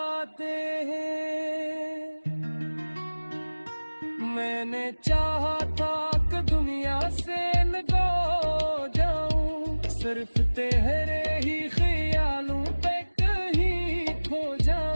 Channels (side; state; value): both; inverted; correlation -1.00